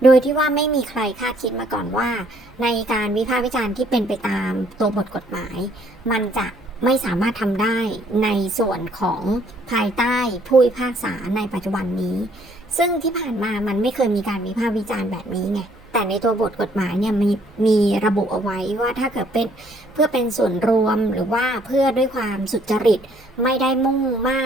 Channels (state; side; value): noise; right; hum, 28 dB below the sound